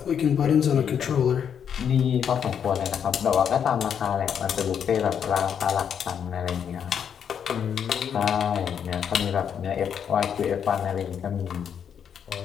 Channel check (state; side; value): quieter; right; 8.0 dB